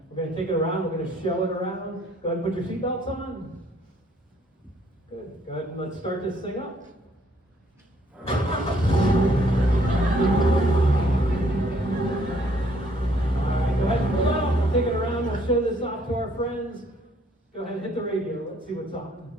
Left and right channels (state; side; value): normal; both; correlation 0.65